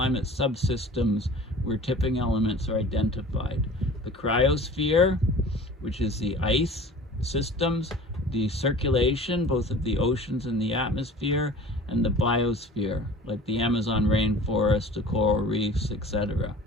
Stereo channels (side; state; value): both; normal; correlation 0.43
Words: subsystems where tipping elements are identified. The cryosphere, which is the ice systems, the circulation, both of the oceans and the atmosphere, and the biosphere, like the Amazon rainforest, the coral reefs, etc.